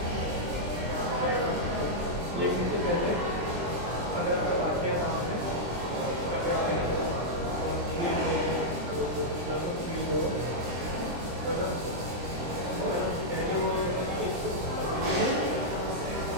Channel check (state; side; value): late; left; 23 ms